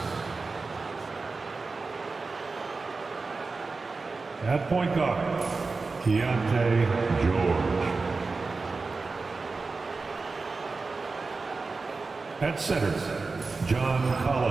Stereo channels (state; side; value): quieter; left; 4.0 dB